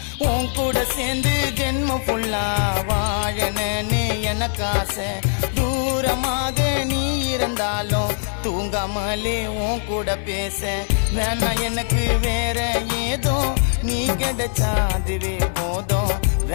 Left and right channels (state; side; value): silent; right; digital silence